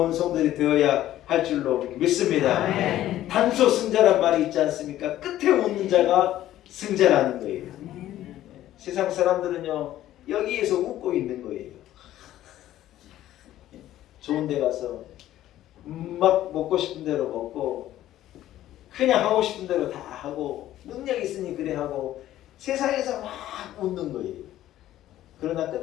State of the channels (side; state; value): right; quieter; 13.4 dB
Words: 성들이 되어야 할 줄로 믿습니다. 아멘. 단소 승자란 말이 있지 않습니까? 끝에 웃는 자가 승자라는 거예요. 세상 사람들은요 여기에서 웃고 있는 거예요. 좋은 데 가서 막 먹고 싶은 대로 먹고 그냥 하고 싶은 대로 다 하고 능력 있으니 그래 하고 세상에서 막 웃는 거예요. 그러나